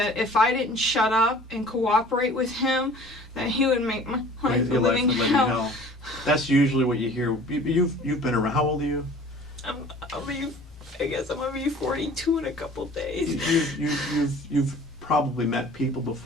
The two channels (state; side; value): normal; both; correlation 0.48